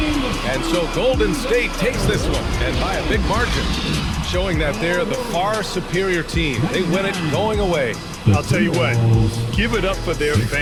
And so Golden State takes this one, and by a big margin, showing that they're the far superior team. They win it going away. I'll tell you what, give it up for their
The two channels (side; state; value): both; identical; correlation 1.00